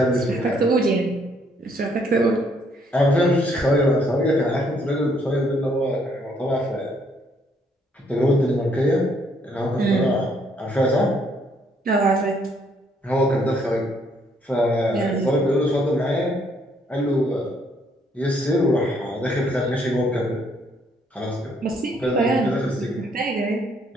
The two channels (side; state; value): both; normal; correlation 0.68